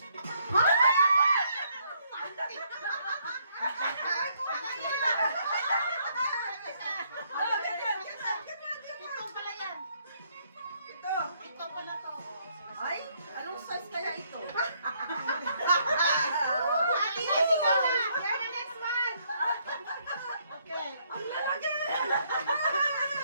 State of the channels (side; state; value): both; inverted; correlation -0.70